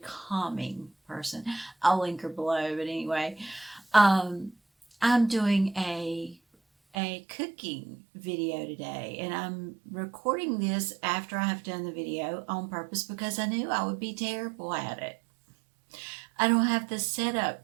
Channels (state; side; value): drops out; left; at 7.0 s